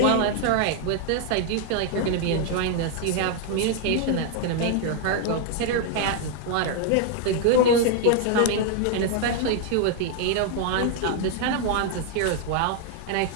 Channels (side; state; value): both; different; correlation 0.00